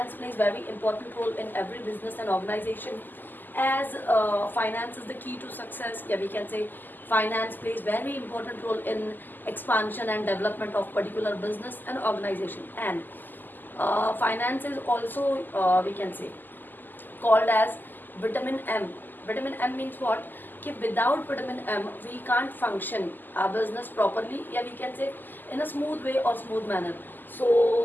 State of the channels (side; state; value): right; late; 0.088 ms